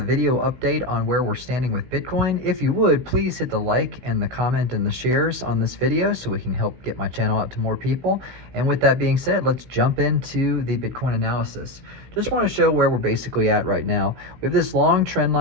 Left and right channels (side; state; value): left; late; 16 ms